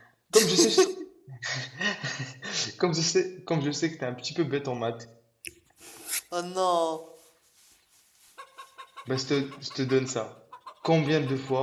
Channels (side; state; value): both; identical; correlation 1.00